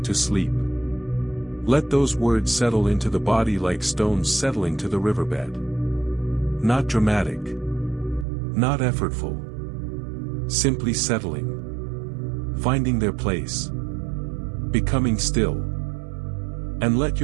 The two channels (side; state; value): left; drops out; at 8.2 s